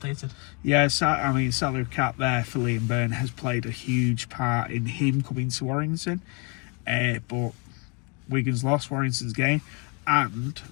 Yeah, I mean, salary cap there for Liam Byrne has played a huge part in him coming to Warrington. But Wigan's lost Warrington's game, and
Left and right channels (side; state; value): right; quieter; 33.7 dB